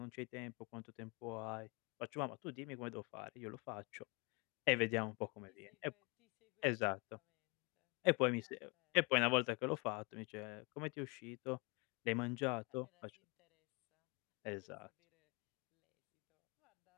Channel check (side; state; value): right; quieter; 30.1 dB